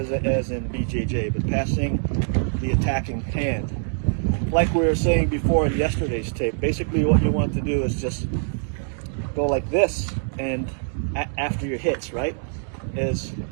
in BJJ, but passing the attacking hand. Like we were saying before in yesterday's tape, basically what you want to do is just go like this, and after your hits, right, is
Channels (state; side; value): silent; left; digital silence